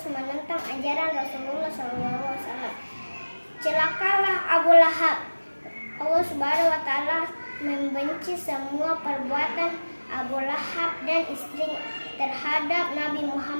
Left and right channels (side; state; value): both; inverted; correlation -1.00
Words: menentang ajaran Rasulullah SAW. Celakalah Abu Lahab. Allah Subhanahu wa Ta'ala membenci semua perbuatan Abu Lahab dan istrinya terhadap Nabi